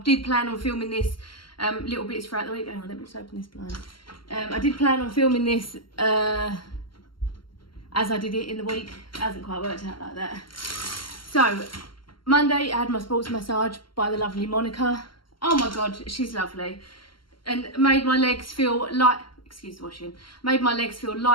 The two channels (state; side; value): late; right; 0.73 ms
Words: did plan on filming this little bits throughout the week. Hang on, let me just open this blind. I did plan on filming this as I did it in the week. It hasn't quite worked out like that. So, Monday I had my sports massage by the lovely Monica. Oh my God, she's lovely. And made my legs feel light, excuse the washing, made my legs feel